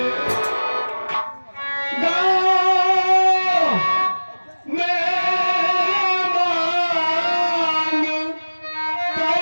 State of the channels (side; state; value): both; inverted; correlation -1.00